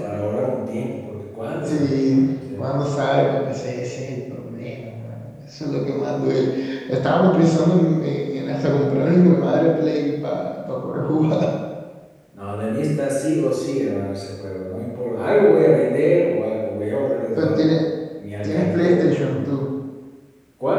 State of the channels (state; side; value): identical; both; correlation 1.00